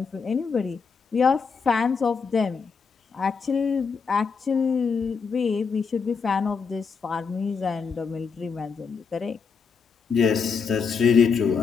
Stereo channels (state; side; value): quieter; right; 5.5 dB